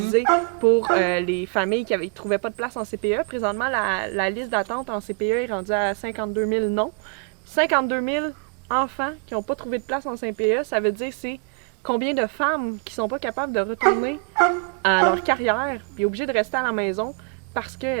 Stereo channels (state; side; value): quieter; left; 37.0 dB